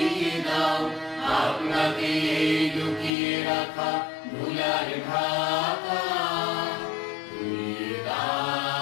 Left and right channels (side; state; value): right; drops out; at 3.1 s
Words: দাও আপনাকে এই লুকিয়ে রাখা ধুলার ঢাকা। ধুইয়ে